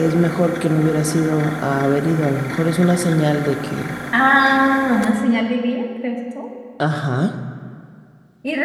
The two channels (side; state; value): both; identical; correlation 1.00